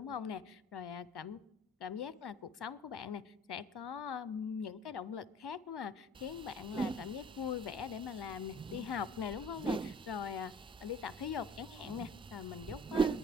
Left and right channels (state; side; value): normal; both; correlation 0.49